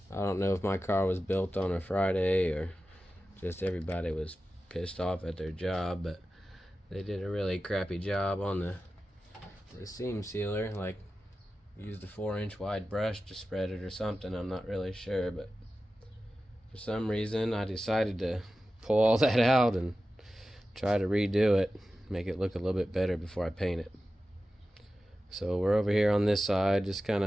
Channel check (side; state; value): both; normal; correlation 0.94